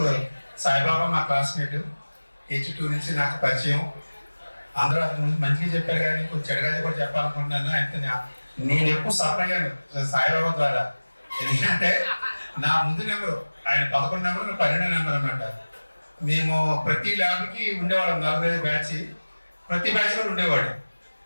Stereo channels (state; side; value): inverted; both; correlation -1.00